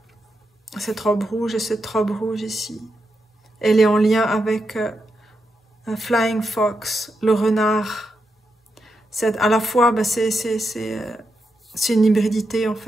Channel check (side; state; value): both; normal; correlation 0.85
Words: Cette robe rouge et cette robe rouge ici. Elle est en lien avec un Flying Fox, le renard. À la fois, bah, c'est une hybridité en